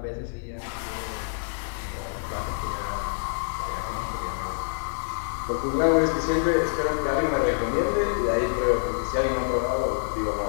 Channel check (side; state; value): right; silent; digital silence